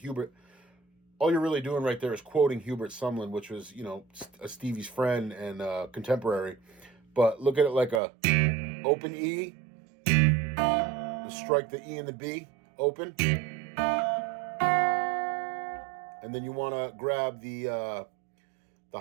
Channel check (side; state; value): left; drops out; at 8.0 s